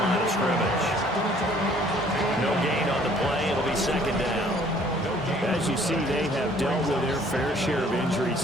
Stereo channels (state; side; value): normal; both; correlation 0.58